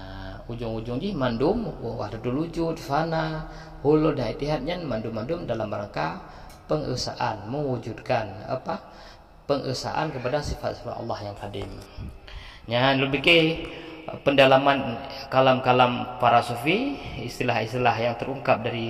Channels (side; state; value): both; identical; correlation 1.00